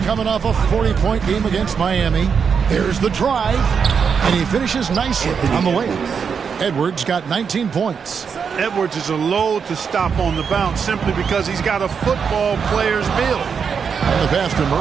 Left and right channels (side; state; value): left; quieter; 6.4 dB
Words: off a 40-point game against Miami. There's the drive, and he finishes nicely on the layup. Edwards got 19 points. Edwards is a load to stop on the bounce simply because he's got a football player's build. And the pass to